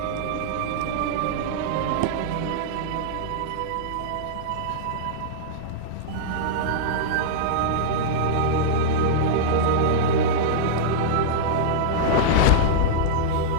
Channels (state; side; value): different; both; correlation -0.02